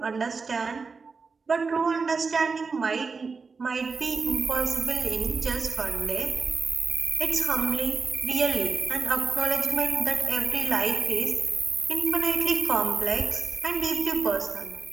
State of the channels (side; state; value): left; quieter; 4.8 dB